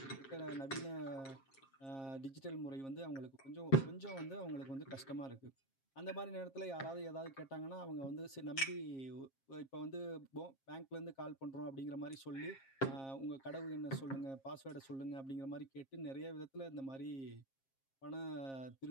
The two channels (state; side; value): late; right; 7.4 ms